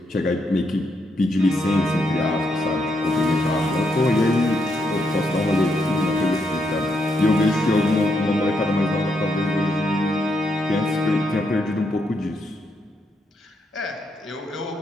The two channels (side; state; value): both; normal; correlation 0.79